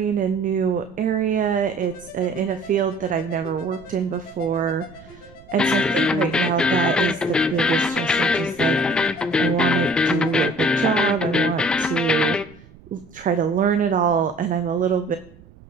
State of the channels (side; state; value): right; noise; rumble, 24 dB below the sound